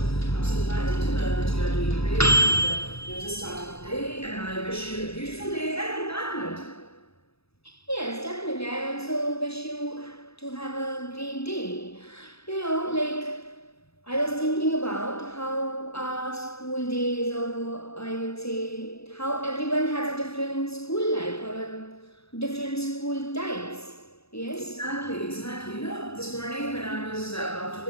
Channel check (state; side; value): late; right; 0.78 ms